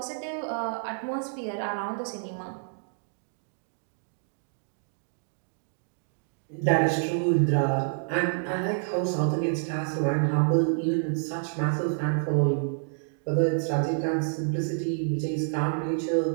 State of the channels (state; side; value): silent; left; digital silence